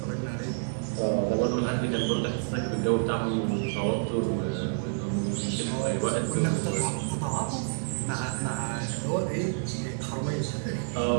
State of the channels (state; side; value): silent; left; 59 dB below the other